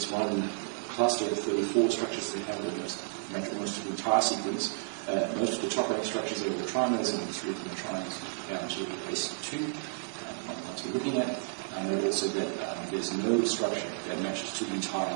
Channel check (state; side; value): silent; left; digital silence